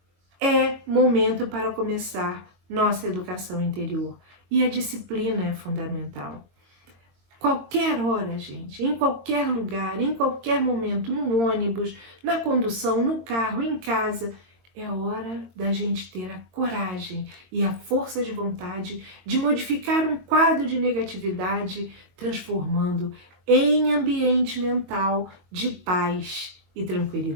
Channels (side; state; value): left; late; 22 ms